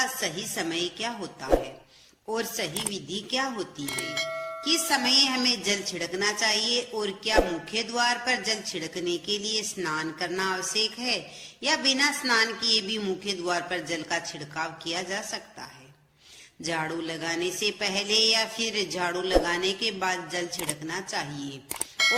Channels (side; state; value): both; identical; correlation 1.00